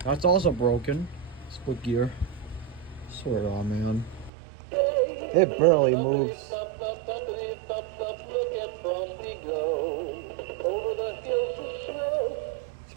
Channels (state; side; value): drops out; left; at 4.3 s